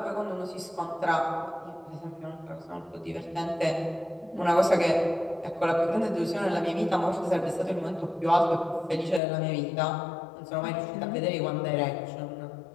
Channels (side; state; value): right; drops out; at 9.2 s